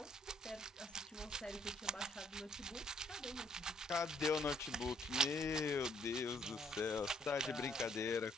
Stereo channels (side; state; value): both; normal; correlation 0.66